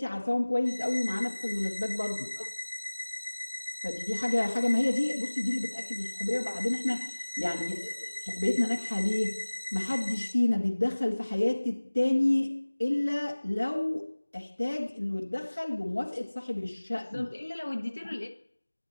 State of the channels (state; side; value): inverted; both; correlation -1.00